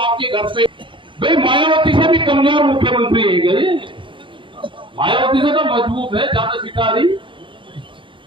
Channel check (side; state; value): left; late; 0.24 ms